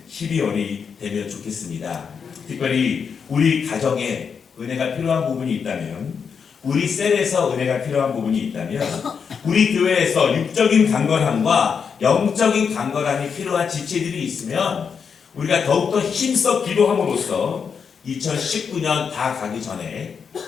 12월이 되면 좋겠습니다. 특별히 우리 가정에 은혜가 필요한 부분이 있다면 우리 셀에서 은혜가 필요한 부분이 있다면 우리 교회에서 육적인 강건함과 영적인 강건함이 필요한 지체들이 있으면 우리가 더욱더 힘써 기도함으로써 2019년 다 가기 전에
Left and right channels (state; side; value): quieter; right; 6.4 dB